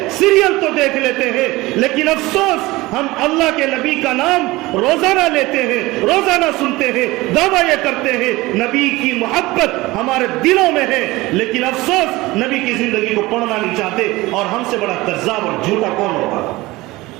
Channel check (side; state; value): left; quieter; 20.2 dB